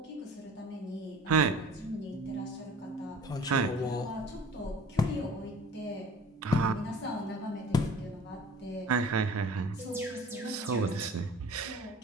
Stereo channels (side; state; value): both; normal; correlation 0.45